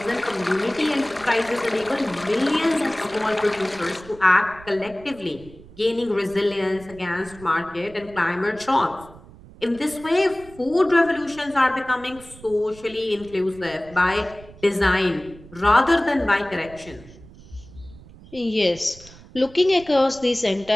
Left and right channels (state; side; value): noise; right; rumble, 21 dB below the sound